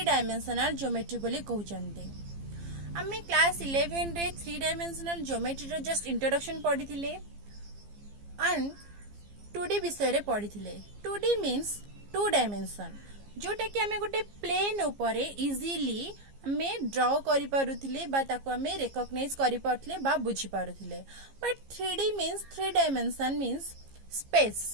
डायमेंशनल ज्योमेट्री बोली कहते। आम क्लास 11 रे 3 डायमेंशनल ज्योमेट्री रो जस्ट इंट्रोडक्शन पढ़ी एंड 2D विषय रे पढ़ी। 2D मीन्स 2 डायमेंशन जोटा कि आम गोटे प्लेन उपर इजिली आम ड्र करि पारुथिले बा ताको आम रिकॉग्नाइज करि पारुथिले बा बुझी पारुथिले। But 3D means 3 dimension means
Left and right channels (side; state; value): left; late; 15 ms